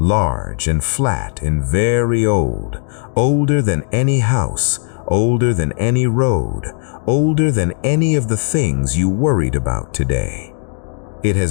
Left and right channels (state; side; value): silent; right; digital silence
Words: and flat and very old, older than any house, older than any road, older than any of the things you worried about today. It